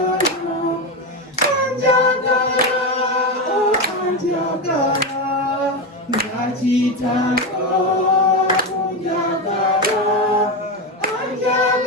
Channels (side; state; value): both; normal; correlation 0.13